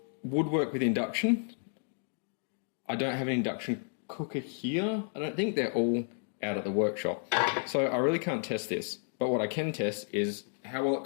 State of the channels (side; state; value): right; silent; 57 dB below the other